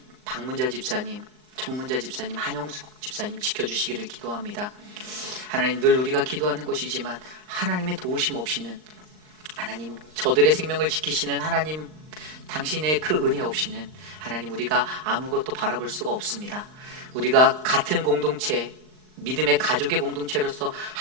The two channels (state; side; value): late; left; 39 ms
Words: 박문자 집사님, 정문자 집사님, 한영숙 집사님 지켜주시기를 기도합니다. 하나님 늘 우리가 기도하는 것이지만 하나님의 도우심 없이는, 하나님 저들의 생명을 지키시는 하나님 당신의 그 은혜 없이는 하나님 우리가 아무것도 바라볼 수가 없습니다. 우리가 같은 공동체 믿음의 가족의 공동체로서